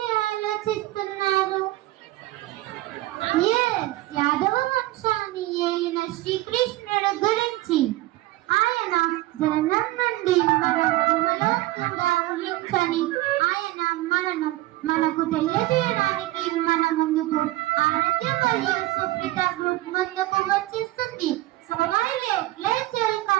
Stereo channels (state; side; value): quieter; left; 17.6 dB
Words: ఆలోచిస్తున్నారు? యాదవ వంశాన్ని ఏలిన శ్రీకృష్ణుడు గురించి. ఆయన జననం నుండి మరణంలో కూడా ఊహించని ఆయన మనకు తెలియజేయడానికి మన ముందుకు ఆరోగ్య మరియు సుప్రీత గ్రూప్ ముందుకు వచ్చేస్తుంది. So let's